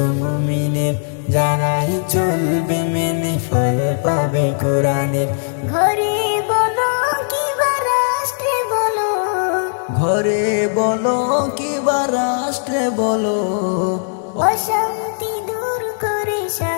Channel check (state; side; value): silent; right; 58 dB below the other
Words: মুমিনের, যারাই চলবে মেনে ফল পাবে কোরআনের। ঘরে বলো কিবা রাষ্ট্রে বলো, ঘরে বলো কিবা রাষ্ট্রে বলো, অশান্তি দূর করে